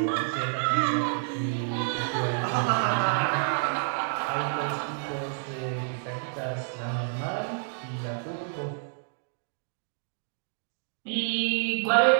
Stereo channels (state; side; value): silent; left; digital silence